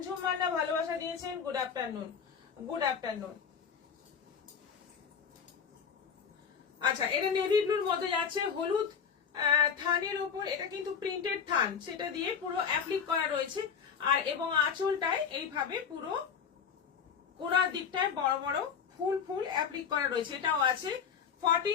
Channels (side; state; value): right; quieter; 7.0 dB